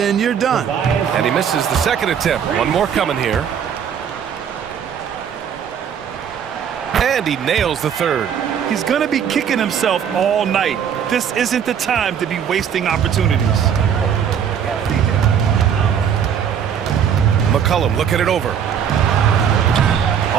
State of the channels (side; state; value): left; quieter; 8.1 dB